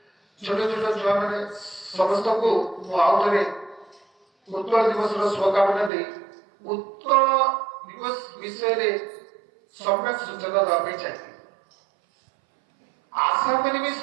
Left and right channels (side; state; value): left; drops out; at 5.9 s